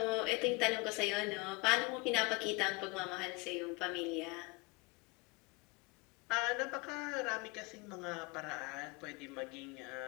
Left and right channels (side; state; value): right; quieter; 26.4 dB